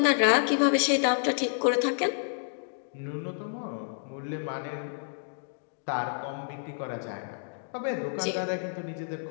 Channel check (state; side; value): silent; right; digital silence